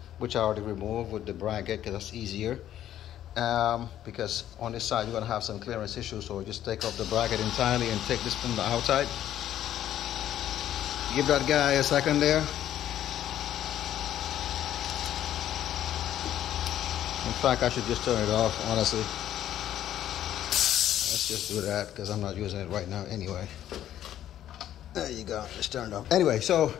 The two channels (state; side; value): quieter; right; 11.6 dB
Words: which I already removed with the bracket because that's easier, because on this side you're going to have some clearance issues. So just take off the bracket entirely and take this from the outside. Give that guy a second there. In fact, I should just turn it off, honestly. Let's just do that because I'm not using it right now anyway. There you go, just turned off. Anyway, so